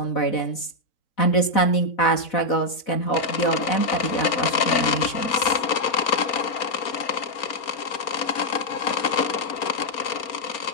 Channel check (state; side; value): late; right; 4.1 ms